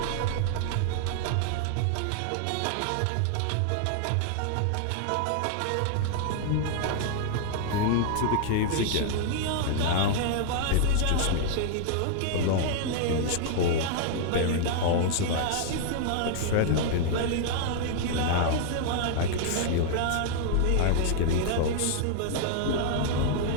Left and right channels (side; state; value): both; different; correlation -0.01